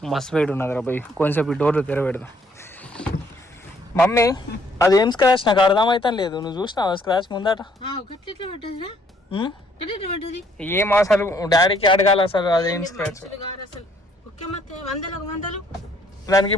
మస్తు వెయిట్ ఉన్నది రా పోయి. కొంచెం ఈ డోర్లు తెరబెడదాం. మమ్మీ అదేం స్క్రాచ్ నాకు అర్థమైతే లేదు. నువ్వు చూసినావా స్క్రాచ్ ముందట? ఏం అసలు డాడీకి అడగాలి అసలు అదేం స్క్రాచ్. దానికి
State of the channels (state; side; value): normal; both; correlation 0.65